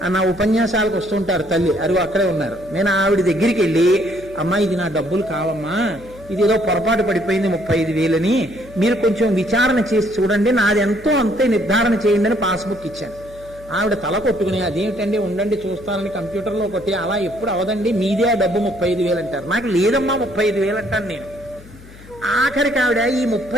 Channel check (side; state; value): left; noise; hum, 20 dB below the sound